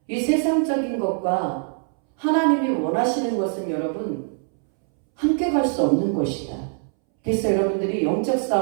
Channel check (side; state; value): left; silent; 64 dB below the other